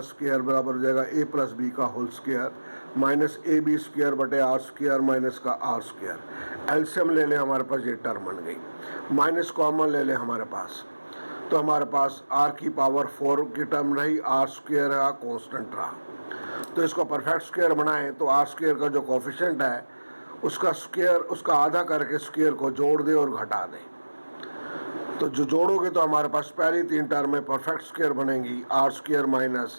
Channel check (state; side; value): inverted; both; correlation -1.00